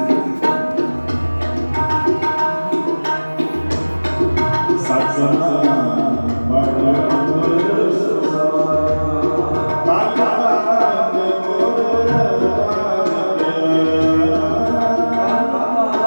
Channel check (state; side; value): inverted; both; correlation -1.00